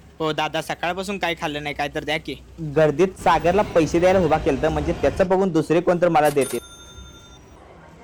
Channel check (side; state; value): both; identical; correlation 1.00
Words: हो दादा सकाळपासून काय खाल्लं नाही. काय तर द्या की. गर्दीत सागरला पैसे द्यायला उभा केलं म्हणजे त्याचं बघून दुसरे कोणतर मला देते.